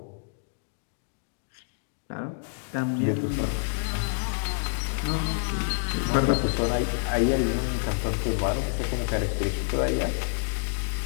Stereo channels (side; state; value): right; silent; digital silence